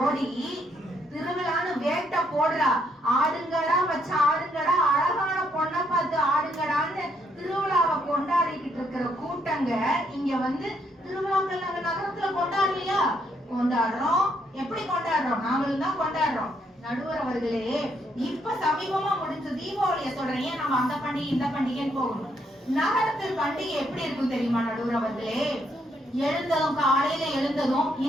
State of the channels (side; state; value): both; normal; correlation 0.74